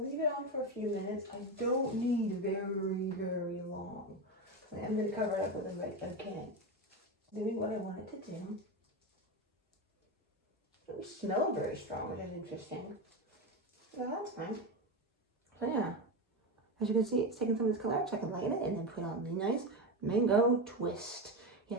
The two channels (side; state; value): both; normal; correlation 0.16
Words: leave it on for a few minutes. I don't need very long. I'm going to cover it up with the right can. Doing what I want it to do. It doesn't smell very strong, which is interesting. Well, that's fine. So yeah, as you can see, it's taking some of this color, so I can lighten it and then put on the nice mango twist.